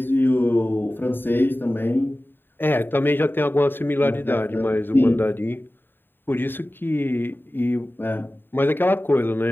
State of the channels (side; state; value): right; late; 0.096 ms